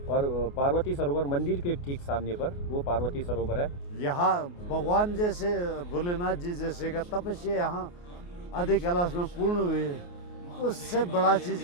और पार्वती सरोवर मंदिर के ठीक सामने पर वो पार्वती सरोवर है। यहाँ भगवान जैसे भोलेनाथ जी जैसे का तपस्या यहाँ आदि कैलाश में पूर्ण हुई है, उससे बड़ा चीज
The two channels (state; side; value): late; right; 28 ms